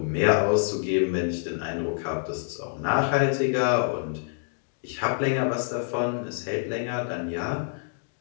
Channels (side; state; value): right; silent; digital silence